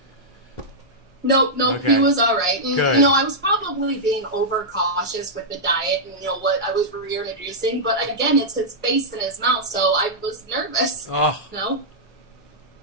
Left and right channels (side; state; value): both; normal; correlation -0.09